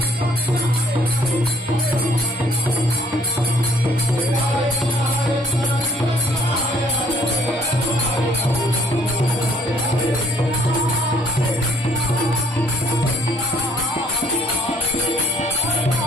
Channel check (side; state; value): both; normal; correlation 0.63